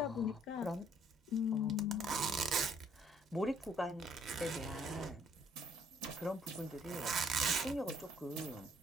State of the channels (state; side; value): normal; both; correlation 0.62